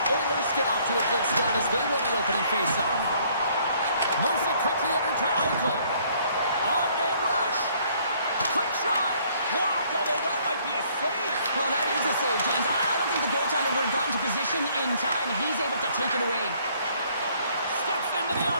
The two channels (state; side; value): inverted; both; correlation -0.63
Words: Oilers get off to a good start as they win the opening face-off. Moves it quickly over to Eichel. On-man rush. Quick shot. Blocked, although that might be a save. Well, that is a save, James. I don't think the goaltender would have gotten to position in time, and he's able to take it away. Steps into the